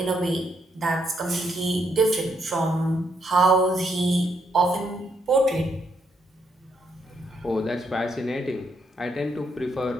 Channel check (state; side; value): normal; both; correlation 0.75